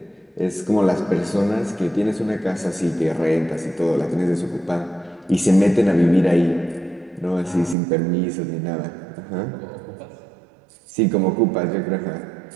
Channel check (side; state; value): left; drops out; at 7.8 s